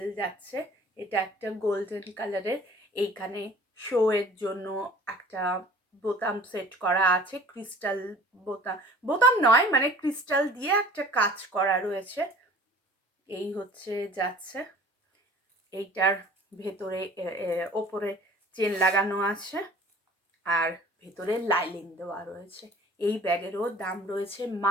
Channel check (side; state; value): both; normal; correlation 0.47